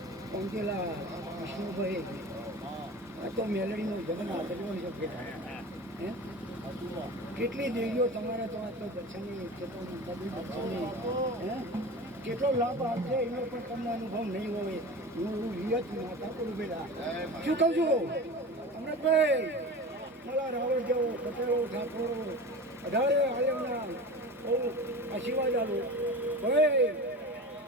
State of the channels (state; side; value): normal; both; correlation 0.33